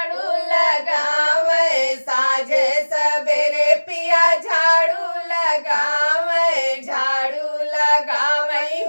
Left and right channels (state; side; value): inverted; both; correlation -1.00